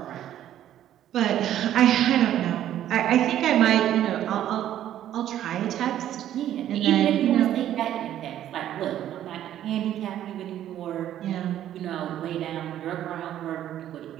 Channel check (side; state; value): left; quieter; 11.6 dB